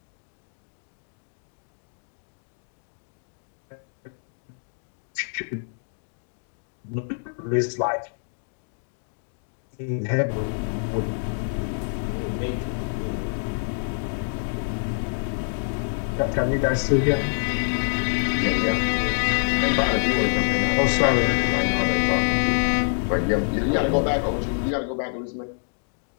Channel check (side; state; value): right; silent; digital silence